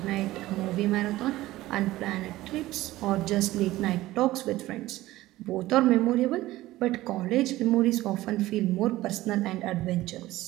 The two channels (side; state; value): left; quieter; 16.7 dB